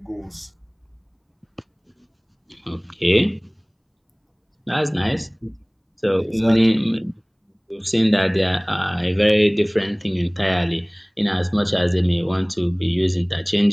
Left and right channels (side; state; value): both; identical; correlation 1.00